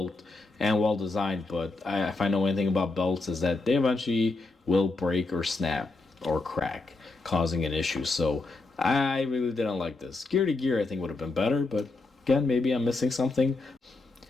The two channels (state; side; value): quieter; right; 3.4 dB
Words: and well designed. But if I know anything about belts, is that they eventually will break or snap or crack, causing an issue. So I really didn't like this. Gear to gear, I think would have been better. But again, maybe I'm missing something.